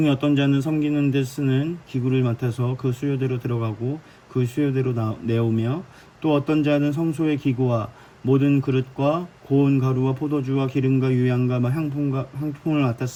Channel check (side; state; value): both; identical; correlation 1.00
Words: 어떤 자는 섬기는 데 쓰는 기구를 맡아서 그 수요대로 들어가고 그 수요대로 내오며 또 어떤 자는 성소의 기구와 모든 그릇과 고운 가루와 포도주와 기름과 유향과 향품을